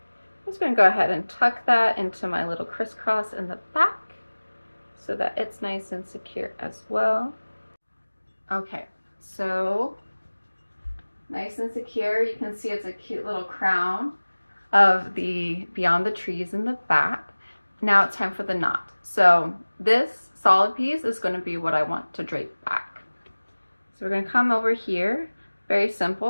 just going to go ahead and tuck that into my little crisscross in the back, so that it's nice and secure as well. Okay, so nice and secure. You can see it's a cute little crown of the Beyond the Trees in the back. Now it's time for the knot. So this solid piece is going to be what I want to drape back. So we're going to come over here, very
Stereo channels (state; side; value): inverted; both; correlation -1.00